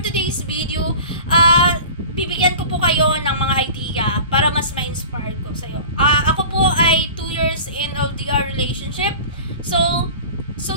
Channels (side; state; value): both; inverted; correlation -0.38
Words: video, bibigyan ko po kayo ng mga idea para mas ma-inspire ko sa iyo. Ako po ay 2 years in LDR relationship. So